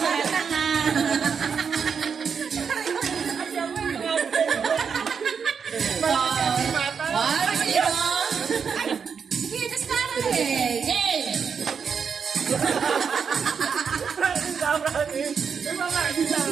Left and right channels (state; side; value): quieter; left; 6.4 dB